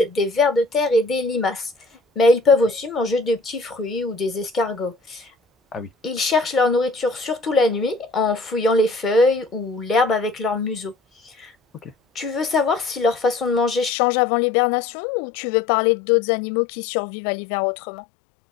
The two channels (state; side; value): drops out; right; at 13.9 s